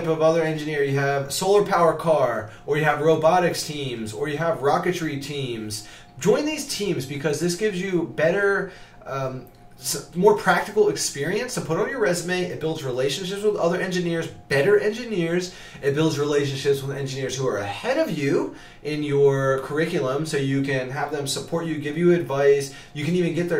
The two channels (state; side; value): identical; both; correlation 1.00